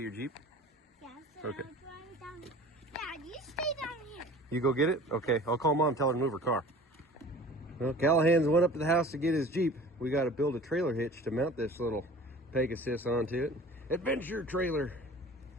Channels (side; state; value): both; normal; correlation 0.43